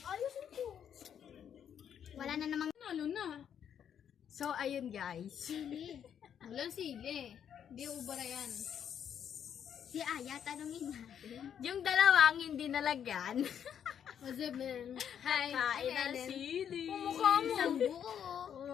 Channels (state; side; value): quieter; right; 8.7 dB